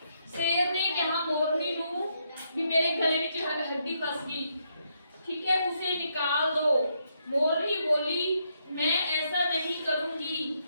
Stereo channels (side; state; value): both; inverted; correlation -0.77